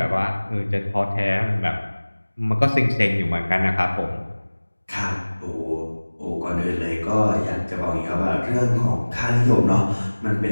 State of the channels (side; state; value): both; inverted; correlation -1.00